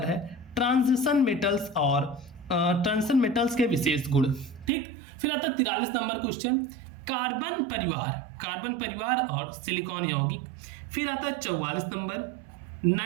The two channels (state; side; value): drops out; left; at 4.7 s